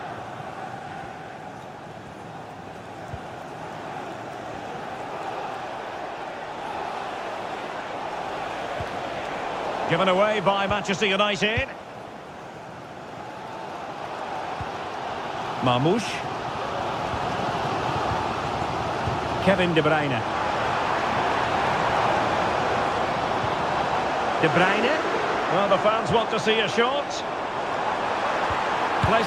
Given away by Manchester United. Marmoush. Kevin De Bruyne. De Bruyne. Well, the fans want to see a shot.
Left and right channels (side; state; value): both; identical; correlation 1.00